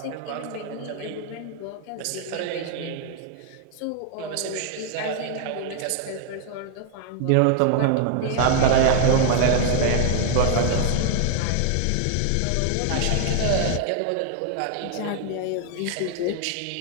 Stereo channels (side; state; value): both; different; correlation 0.00